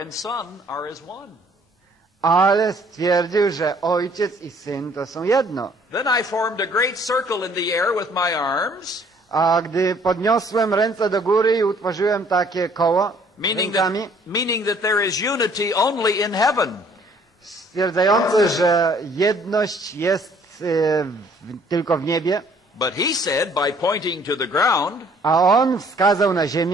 and Son are as one." Ale stwierdził, że Ojciec i Syn to są jedno. Then I formed a great circle in the air with my arms, A gdy podniosłem ręce do góry i utworzyłem takie koło rękami, meaning that there is unity only in heaven. stwierdzające, że jedność jest tylko w niebie, But he said, by pointing to the ground, a on wskazał na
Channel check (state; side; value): normal; both; correlation 0.59